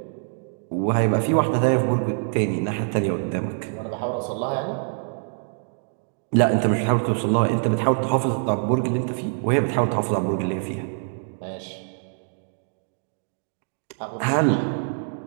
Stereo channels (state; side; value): silent; left; digital silence